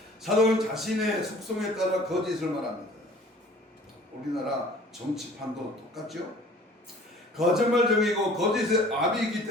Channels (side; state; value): both; normal; correlation 0.49